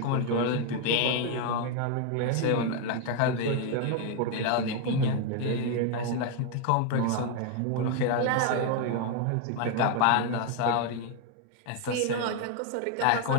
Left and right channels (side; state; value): both; different; correlation 0.01